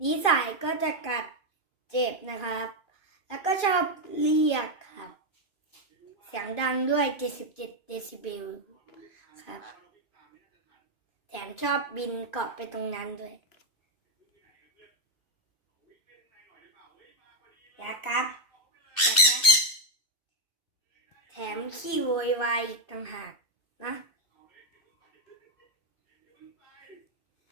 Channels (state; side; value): late; right; 2.6 ms